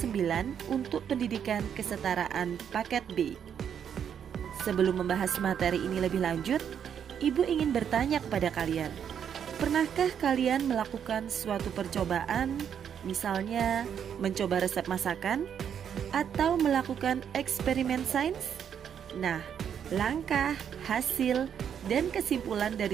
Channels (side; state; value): left; quieter; 8.4 dB